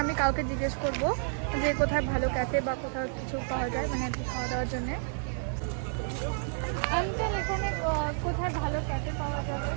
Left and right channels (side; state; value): left; silent; digital silence